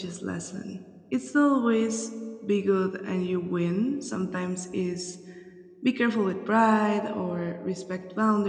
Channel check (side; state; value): both; identical; correlation 1.00